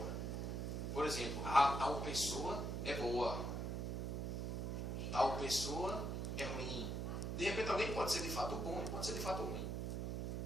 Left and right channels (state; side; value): noise; right; hum, 1 dB below the sound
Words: Por exemplo, tal pessoa é boa, tal pessoa é ruim. De repente alguém pode ser de fato bom e pode ser de fato ruim.